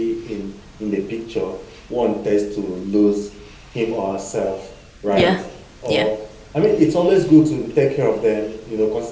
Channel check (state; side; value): identical; both; correlation 1.00